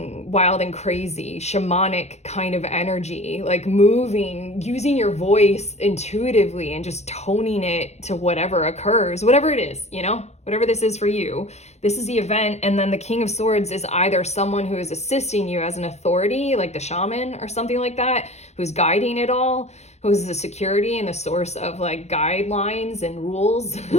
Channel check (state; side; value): late; right; 0.32 ms